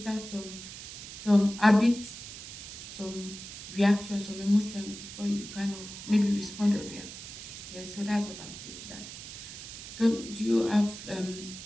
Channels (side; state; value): right; noise; hiss, 12 dB below the sound